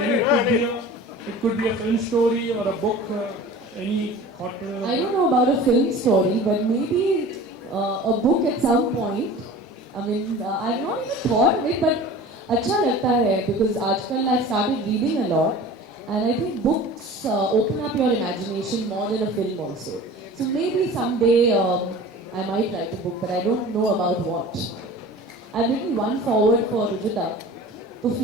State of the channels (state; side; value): normal; both; correlation 0.40